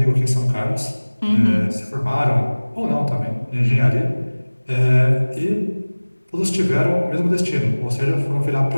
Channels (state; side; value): inverted; both; correlation -1.00